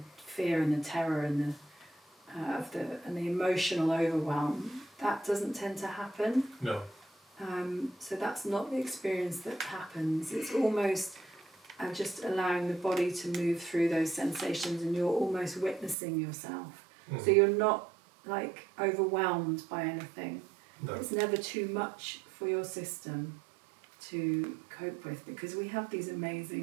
fear and the terror and the emotional overwhelm, that doesn't tend to happen. No. So that's not the experience that happens. It's almost just allowing the body to move through those sensations, and you're almost witnessing yourself. So you're not like overwhelmed by anything. No. It's never too much for your system to cope with, because we have these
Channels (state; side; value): drops out; left; at 16.0 s